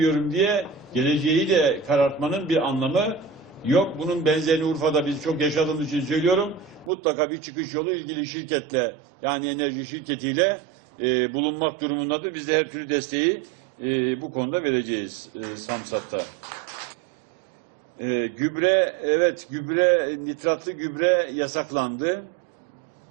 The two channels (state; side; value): drops out; left; at 6.9 s